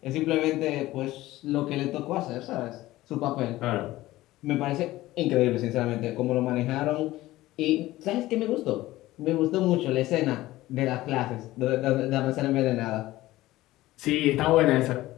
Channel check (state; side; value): quieter; right; 17.0 dB